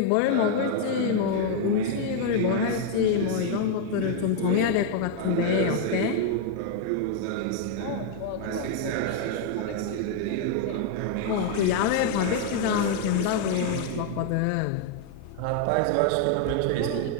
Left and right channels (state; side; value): different; both; correlation 0.00